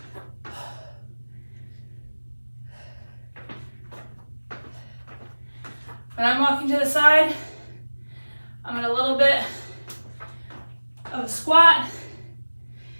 When I'm walking to the side, I'm in a little bit of a squat,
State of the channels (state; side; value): inverted; both; correlation -1.00